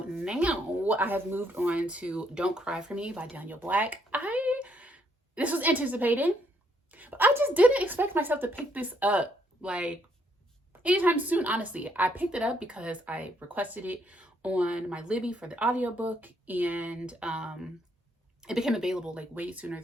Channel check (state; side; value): normal; both; correlation 0.71